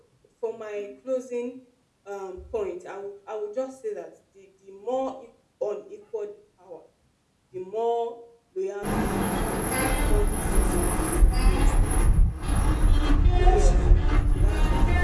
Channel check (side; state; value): both; identical; correlation 1.00